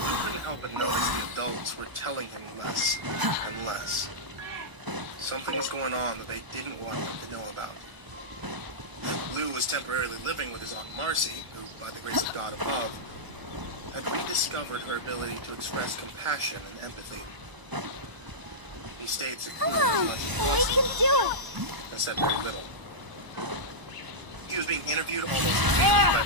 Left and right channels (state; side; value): late; left; 1.0 ms